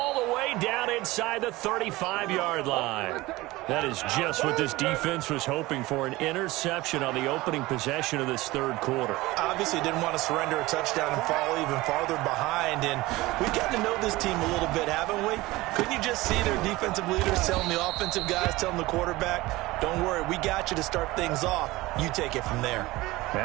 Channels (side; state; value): left; quieter; 19.7 dB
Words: the way down inside the 35-yard line. That is just what this defense was hoping for, an interception on the opening possession of this third quarter. Obviously didn't want to surrender a touchdown and fall even farther behind. And we've gotten to know this team a little bit, haven't we? Couldn't you just see their defensive leaders telling the offensive guys, telling the quarterback, don't worry, we got you to start things off. You take it from there.